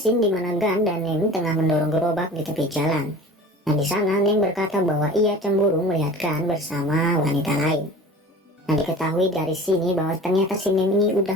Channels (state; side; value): normal; both; correlation 0.40